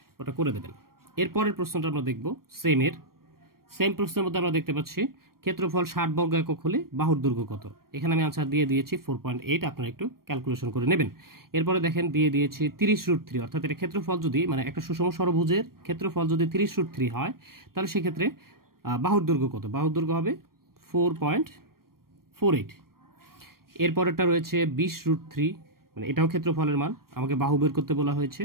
ওটা করে দেবেন। এরপরের প্রশ্নটা আমরা দেখব সেম প্রশ্নের মধ্যে আমরা দেখতে পাচ্ছি ক্ষেত্রফল 60 বর্গ একক হলে বাহুর দৈর্ঘ্য কত। এখানে আমি আনসার দিয়ে দিয়েছি 4.8, আপনারা একটু ক্যালকুলেশন করে নেবেন। এরপরে দেখেন দিয়ে দিয়েছি 30√3, অর্থাৎ এটা ক্ষেত্রফল যদি, মানে একটা সুষম ষড়ভুজের ক্ষেত্রফল যদি 30√3 হয় তাহলে সেক্ষেত্রে বাহুর দৈর্ঘ্য কত? বাহুর দৈর্ঘ্য হবে 4.48। এরপরেরটা রয়েছে 20√3, মানে এটাও ক্ষেত্রফলের মান, আমাকে বাহু বের করতে বলা হয়েছে,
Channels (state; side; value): late; left; 0.93 ms